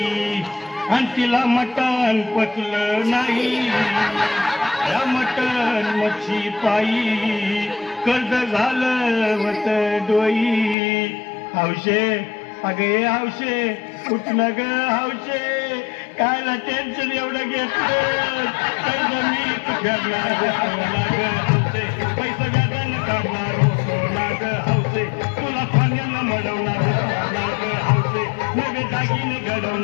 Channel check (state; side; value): drops out; right; at 10.8 s